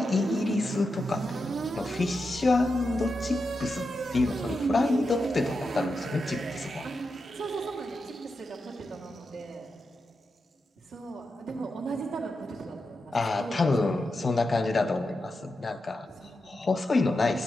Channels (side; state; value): both; normal; correlation 0.88